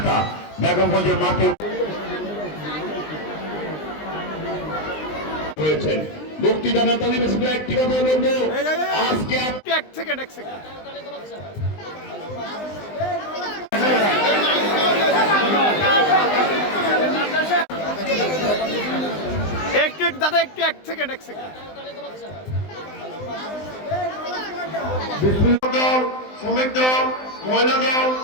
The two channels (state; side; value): late; right; 19 ms